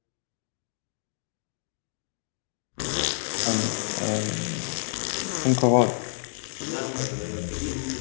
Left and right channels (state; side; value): silent; right; digital silence